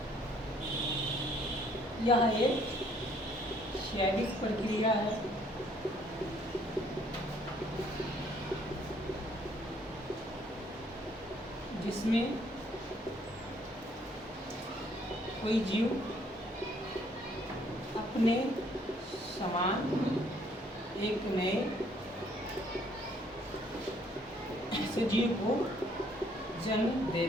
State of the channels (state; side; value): normal; both; correlation 0.64